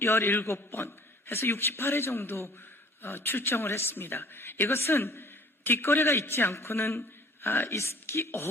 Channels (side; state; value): both; normal; correlation 0.51